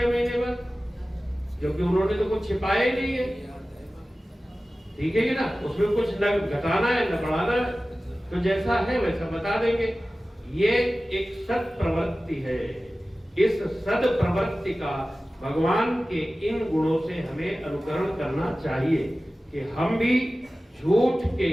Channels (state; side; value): normal; both; correlation 0.96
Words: महीने बाद, क्योंकि उन्होंने तो कुछ छिपाया ही नहीं है। ठीक है कि ना, उसमें कुछ न घटाना है न बढ़ाना है, तो जैसा है वैसा बता देंगे। ये एक सद प्रवृत्ति है। इस सद प्रवृत्ति का भगवान के इन गुणों से हमें अनुकरण करना चाहिए कि हम भी झूठ के,